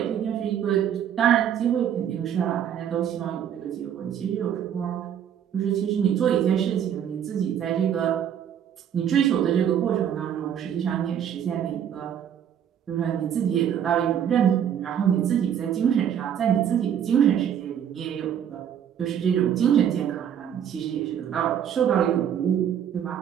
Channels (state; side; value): quieter; left; 9.2 dB